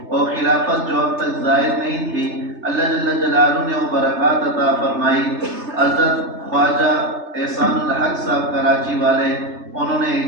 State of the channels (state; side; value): late; left; 3.3 ms